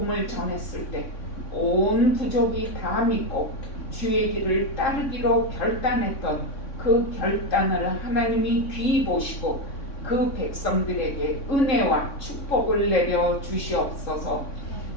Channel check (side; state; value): right; late; 3.6 ms